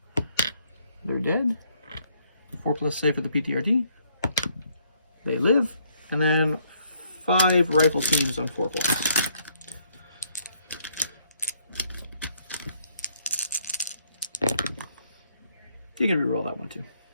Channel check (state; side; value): inverted; both; correlation -0.69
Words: They're dead. 4+ save for the PTRD. They live, and then 5 rifle teams on 4+. You can reroll that one too.